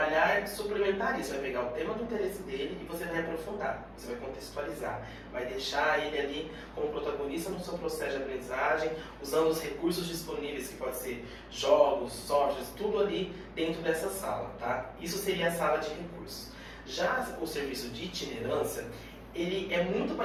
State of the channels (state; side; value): identical; both; correlation 1.00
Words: e suplementar isso, vai pegar o tema do interesse dele e você vai aprofundar, você vai contextualizar, vai deixar ele ali como protagonista no seu processo de aprendizagem, usando os recursos disponíveis, que pode ser jogos, softwares, tudo ali dentro dessa sala, tá? Isso seria a sala de recursos. Já o serviço de itinerância, ele é muito